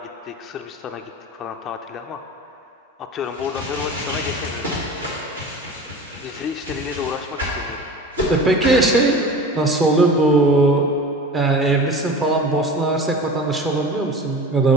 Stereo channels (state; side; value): normal; both; correlation 0.35